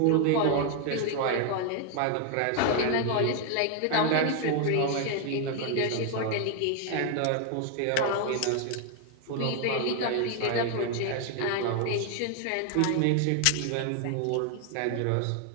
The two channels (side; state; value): both; different; correlation 0.01